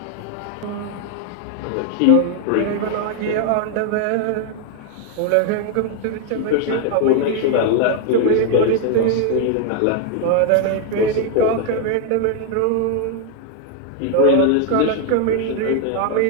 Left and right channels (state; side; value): different; both; correlation 0.00